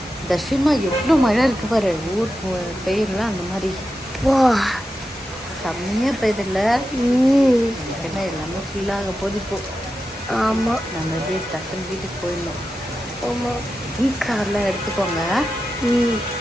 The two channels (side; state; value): both; normal; correlation 0.90